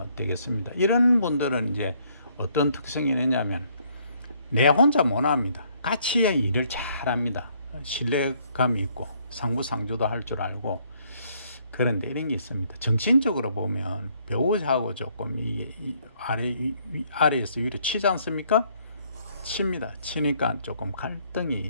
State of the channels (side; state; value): both; inverted; correlation -0.67